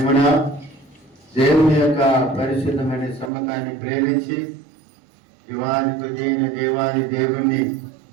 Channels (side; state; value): left; drops out; at 3.3 s